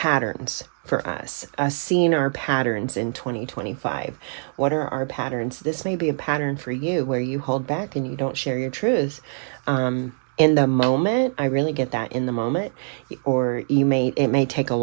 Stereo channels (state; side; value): silent; left; digital silence